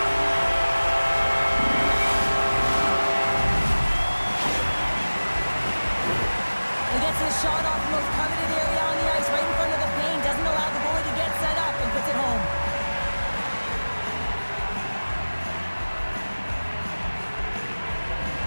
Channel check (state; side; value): inverted; both; correlation -1.00